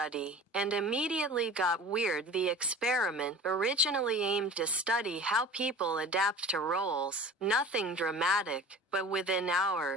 and immediately got weird. The experiment originally aimed to study how people adapt to roles, nothing dramatic, but within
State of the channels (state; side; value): normal; both; correlation 0.40